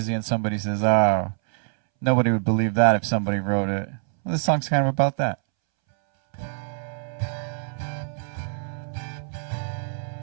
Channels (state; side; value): silent; left; 62 dB below the other